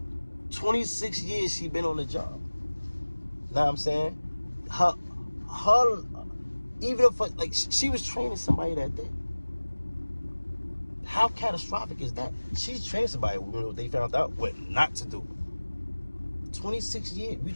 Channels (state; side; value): inverted; both; correlation -1.00